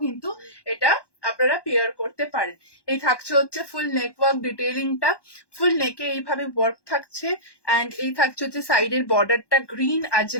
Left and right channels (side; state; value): right; late; 1.1 ms